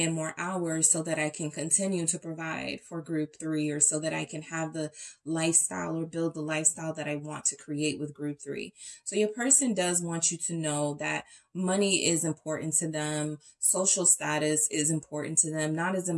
more hours so that I can continue to provide for group 3, or so that I can have the lifestyle or build the lifestyle that I want to create with group 3. So your person does want you to know that money is important to them. Social status is important to them, not as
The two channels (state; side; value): identical; both; correlation 1.00